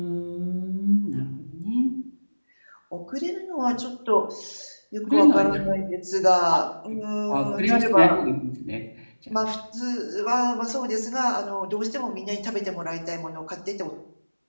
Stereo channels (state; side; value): inverted; both; correlation -1.00